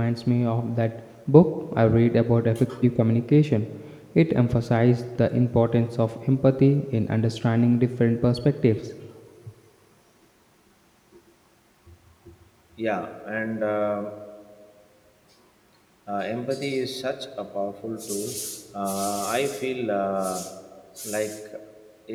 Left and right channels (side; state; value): both; identical; correlation 1.00